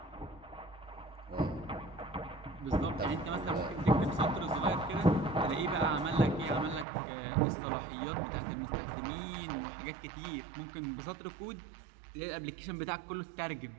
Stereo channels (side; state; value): left; drops out; at 6.9 s